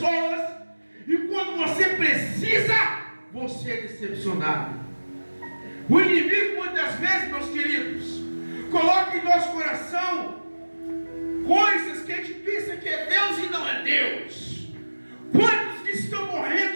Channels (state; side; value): inverted; both; correlation -1.00